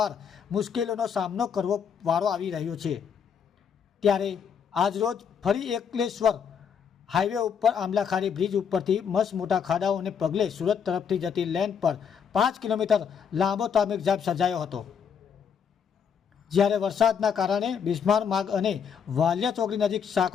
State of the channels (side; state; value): right; quieter; 7.2 dB